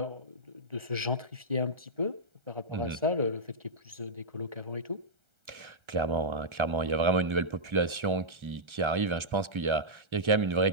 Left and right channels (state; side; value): late; left; 1.3 ms